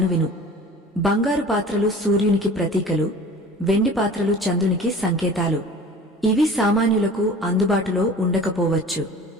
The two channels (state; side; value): normal; both; correlation 0.42